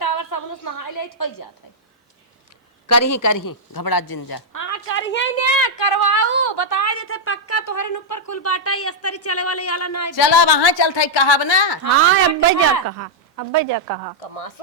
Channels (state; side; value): normal; both; correlation -0.05